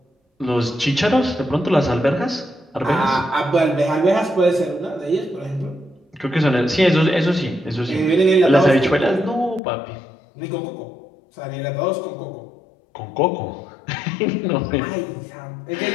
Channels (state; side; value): drops out; right; at 9.6 s